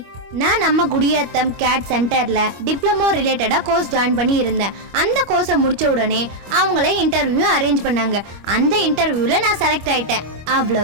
நான் நம்ம குடியாத்தம் CADD சென்டரில் டிப்ளமோ ரிலேட்டடாக கோர்ஸ் ஜாயின் பண்ணி இருந்தேன். அந்த கோர்ஸை முடித்த உடனே அவங்களே இன்டர்வியூ அரேஞ்ச் பண்ணாங்க. அந்த இன்டர்வியூவில் நான் செலக்ட் ஆகிட்டேன்.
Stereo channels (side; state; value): left; late; 25 ms